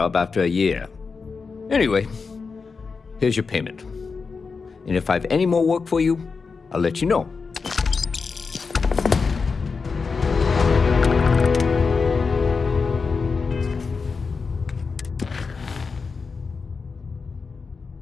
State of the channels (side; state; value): right; quieter; 4.9 dB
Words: after a year. Anyway, here's your payment. And if I have any more work for you, I'll let you know.